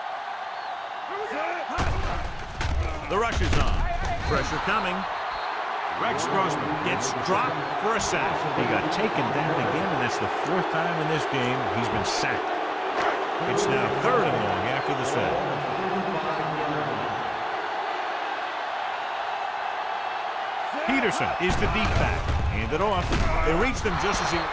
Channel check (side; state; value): both; identical; correlation 1.00